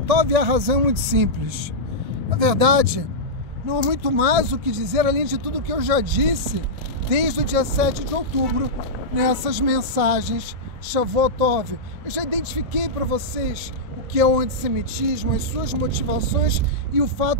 Tov, e a razão é muito simples. Na verdade, não há muito mais o que dizer, além de tudo que eu já disse desde o dia 7 de outubro, nessas mensagens Shavuot Tov. Eu já identifiquei para vocês o que é o antissemitismo, as suas motivações e o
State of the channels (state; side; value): late; left; 1.7 ms